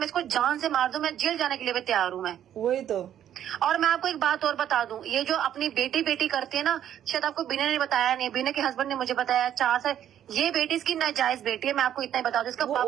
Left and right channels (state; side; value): quieter; left; 10.6 dB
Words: इसको जान से मार दूं, मैं जेल जाने के लिए भी तैयार हूँ मैं। वही तो। और मैं आपको एक बात और बता दूं, ये जो अपनी बेटी करती है ना, शायद आपको बिना ने बताया नहीं, बिना के हस्बैंड ने मुझे बताया 4 साल, ये बेटी इसकी नाजायज बेटी है, मैं आपको इतना ही बता दूं, इसका